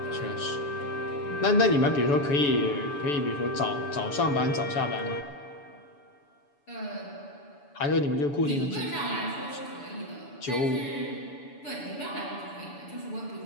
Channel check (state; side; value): late; right; 6.9 ms